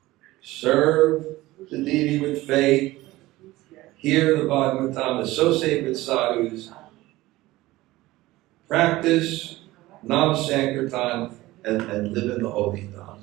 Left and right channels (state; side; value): quieter; left; 18.2 dB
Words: Serve the deity with faith, hear the Bhagavatam, associate with sadhus, practice Nam Sankirtan, and live in the holy Dham.